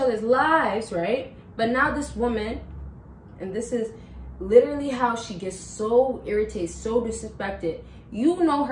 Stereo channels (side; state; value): both; identical; correlation 1.00